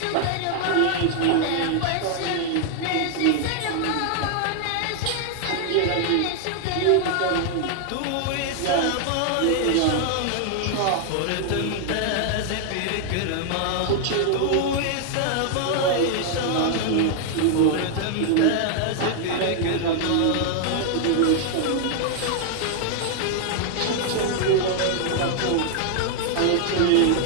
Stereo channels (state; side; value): different; both; correlation 0.00